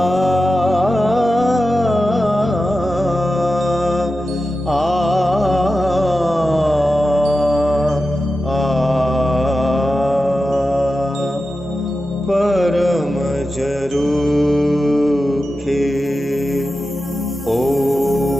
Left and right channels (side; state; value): both; normal; correlation 0.92